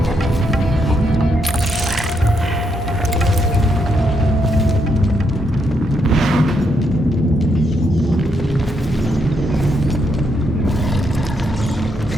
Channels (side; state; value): both; normal; correlation 0.78